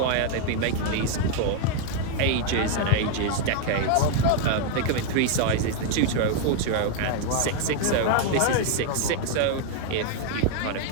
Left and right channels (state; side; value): different; both; correlation 0.00